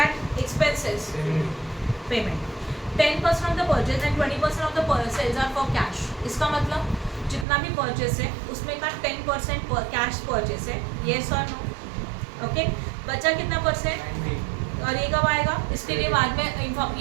expenses payment. 10% of the purchase and 20% of the sales are for cash. इसका मतलब जितना भी परचेस है उसमें का 10% कैश परचेस है, येस और नो? ओके, बचा कितना परसेंट? और ये कब आएगा? इसके लिए बाद में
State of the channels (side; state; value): left; drops out; at 7.5 s